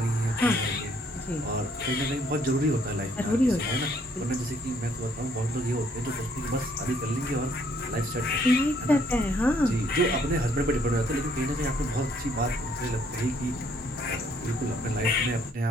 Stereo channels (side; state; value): both; normal; correlation 0.66